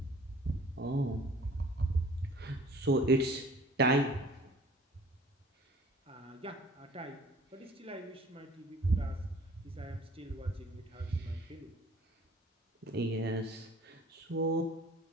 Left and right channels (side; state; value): both; normal; correlation 0.51